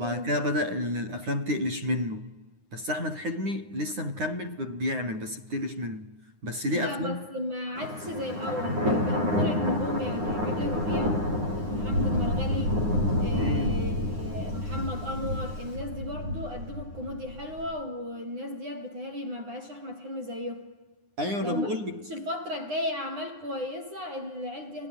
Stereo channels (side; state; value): left; late; 9.7 ms